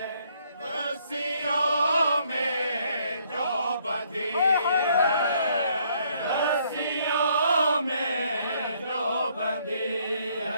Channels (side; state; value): both; inverted; correlation -0.68